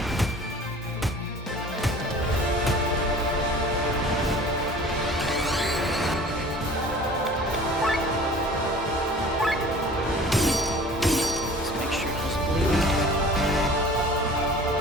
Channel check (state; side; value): normal; both; correlation 0.45